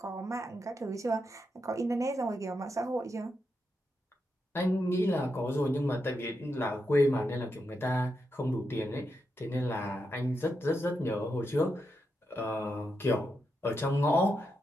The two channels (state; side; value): normal; both; correlation 0.85